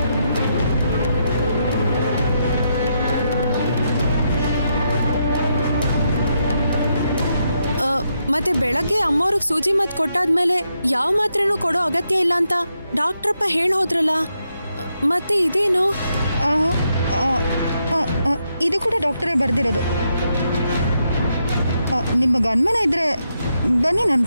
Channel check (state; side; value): inverted; both; correlation -0.81